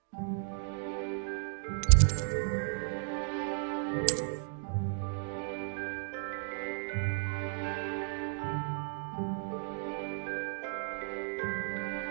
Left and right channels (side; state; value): left; silent; 55 dB below the other